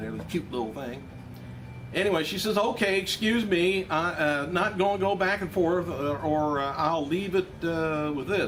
the cute little thing. Anyway, she says, okay, excuse me, not going to go back and forth, or I'll leave it with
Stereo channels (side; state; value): both; identical; correlation 1.00